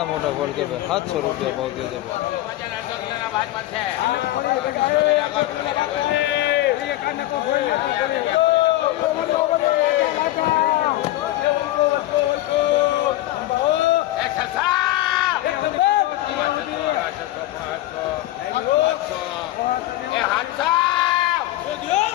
મોટા ફળ છે ભાઈ. 700 રૂપિયા ભાવ થયો છે ભાઈ.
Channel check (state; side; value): quieter; right; 15.9 dB